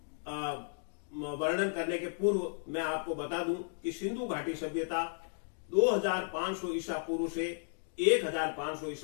वर्णन करने के पूर्व मैं आपको बता दूं कि सिंधु घाटी सभ्यता 2500 ईसा पूर्व से 1500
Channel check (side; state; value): right; silent; digital silence